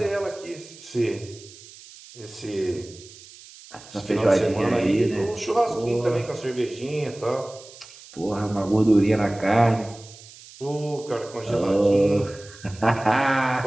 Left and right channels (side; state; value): right; noise; hiss, 20 dB below the sound